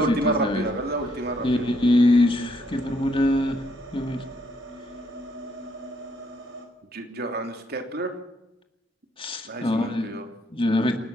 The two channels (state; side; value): normal; both; correlation 0.71